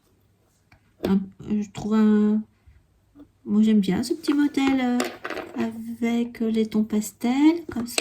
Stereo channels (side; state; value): both; identical; correlation 1.00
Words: Je trouve moi j'aime bien ce petit modèle avec les tons pastels, comme